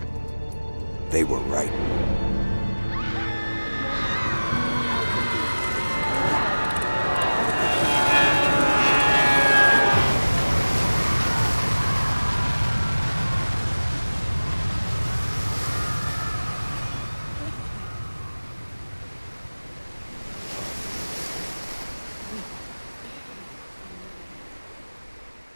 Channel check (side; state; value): both; inverted; correlation -1.00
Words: They were right.